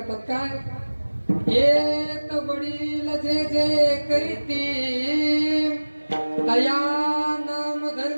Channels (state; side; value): inverted; both; correlation -1.00